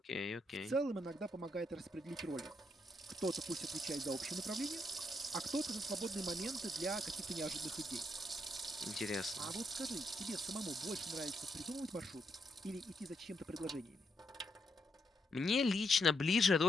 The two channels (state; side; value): normal; both; correlation 0.78